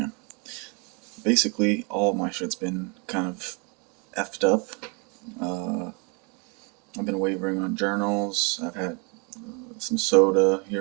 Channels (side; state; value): left; quieter; 32.8 dB